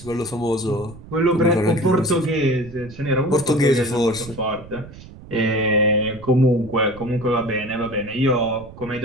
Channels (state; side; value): noise; right; rumble, 17 dB below the sound